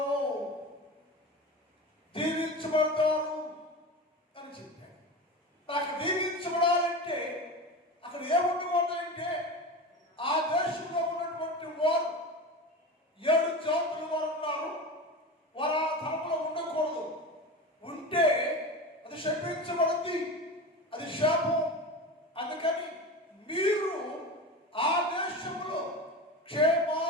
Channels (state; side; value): normal; both; correlation 0.27